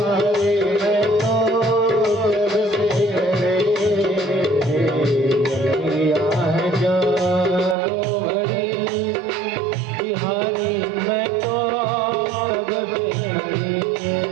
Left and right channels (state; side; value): drops out; left; at 7.8 s